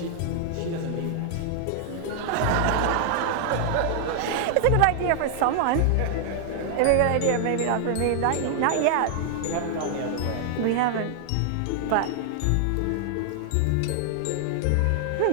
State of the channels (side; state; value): both; different; correlation 0.00